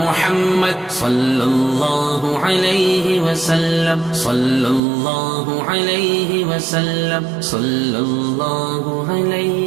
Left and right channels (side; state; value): left; drops out; at 4.8 s